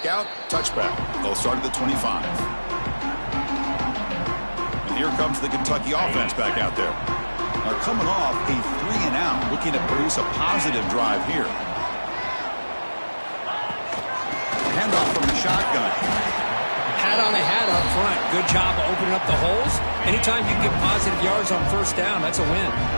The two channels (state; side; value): inverted; both; correlation -1.00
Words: out. Touchback. They'll start at the 25. And here comes the Kentucky offense back out there. Now coming off a 3-and-out, looking to produce a positive drive here. Handoff from the shotgun. Hat on a hat up front. Good job opening up the holes. Anytime you can get positive yards on 1st down, that's a win.